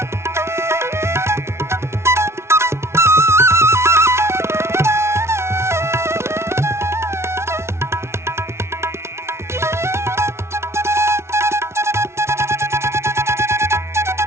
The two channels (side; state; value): left; late; 0.13 ms